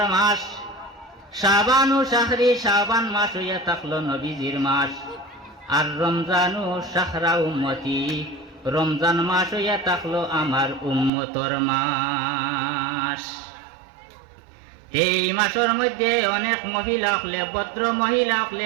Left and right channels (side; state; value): left; drops out; at 11.1 s